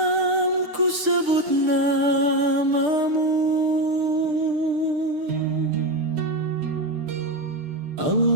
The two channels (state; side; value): late; left; 6.6 ms